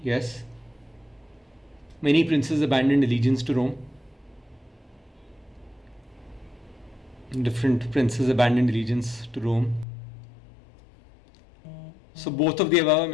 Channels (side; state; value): right; drops out; at 9.9 s